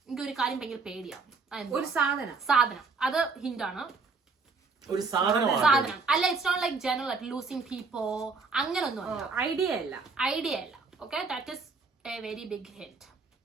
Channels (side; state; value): left; quieter; 4.3 dB